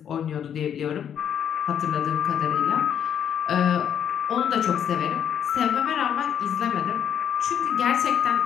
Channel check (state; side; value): quieter; right; 8.9 dB